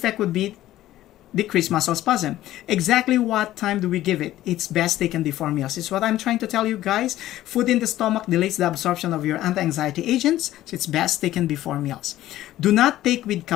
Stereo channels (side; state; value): right; quieter; 14.3 dB